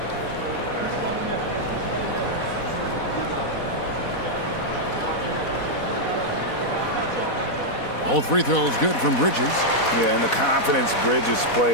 Both free throws good from Bridges. Yeah, and the confidence Bridges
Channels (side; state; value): right; late; 4.1 ms